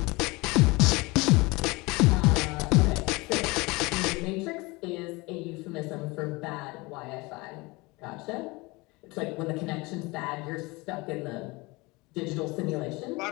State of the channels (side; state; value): right; quieter; 24.3 dB